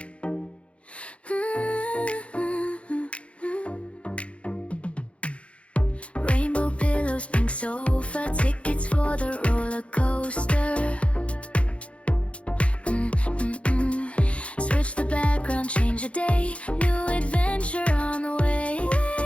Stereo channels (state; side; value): late; right; 0.062 ms